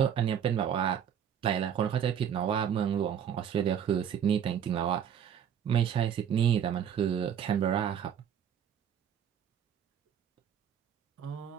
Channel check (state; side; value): quieter; left; 8.7 dB